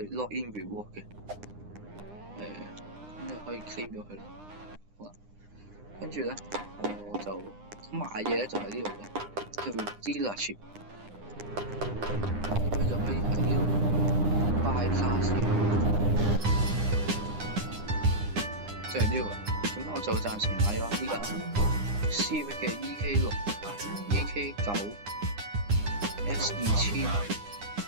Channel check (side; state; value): left; late; 9.8 ms